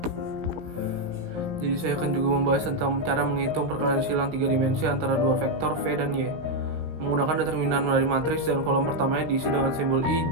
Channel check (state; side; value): late; left; 17 ms